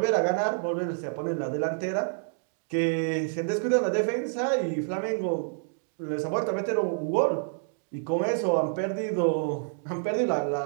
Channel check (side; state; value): left; silent; digital silence